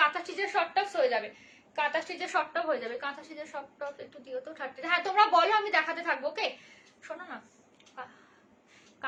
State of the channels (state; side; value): identical; both; correlation 1.00